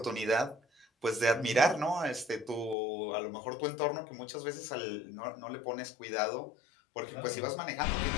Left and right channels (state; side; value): drops out; right; at 2.8 s